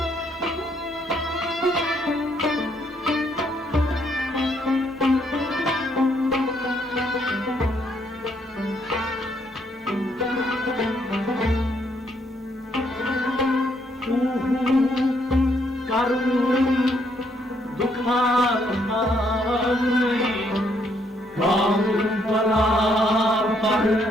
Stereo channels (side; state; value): both; normal; correlation 0.71